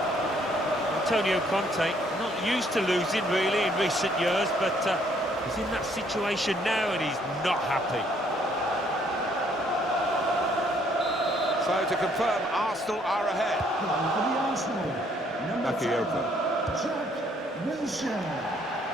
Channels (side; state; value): both; normal; correlation 0.66